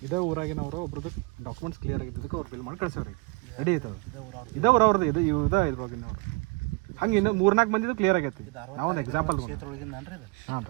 ಇದೇ ಊರಾಗಿನವರು ಒಬ್ರದ್ದು ಡಾಕ್ಯುಮೆಂಟ್ಸ್ ಕ್ಲಿಯರ್ ಆಗಿದ್ದಕ್ಕೆ ಅವ್ರು ಬಿಲ್ ಮಾಡಿ ಕಳಿಸೋರಿ ರೆಡಿ ಐತದೆ. ಇದೇ ಊರವ್ರದ್ದು ಇದು ಇದ್ವಾಗಿನವ್ರು. ಹಂಗೆ ಇನ್ನು 3-4 ಮಂದಿದು ಕ್ಲಿಯರ್ ಆಗೈತಿ. ನಾವೊಂದು ಎಕ್ಸಾಂಪಲ್ ಹಾಂ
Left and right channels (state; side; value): quieter; left; 29.4 dB